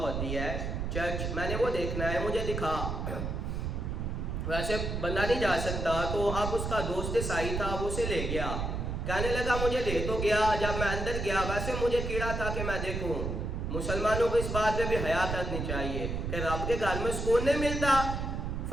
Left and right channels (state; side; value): noise; right; rumble, 3 dB below the sound